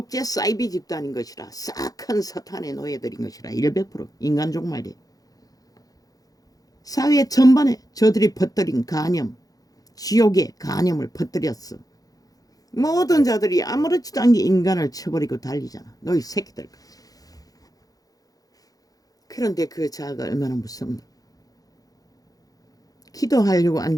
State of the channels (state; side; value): late; right; 0.18 ms